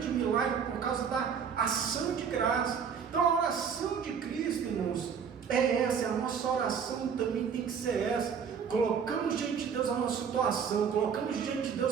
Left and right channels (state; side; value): quieter; left; 6.9 dB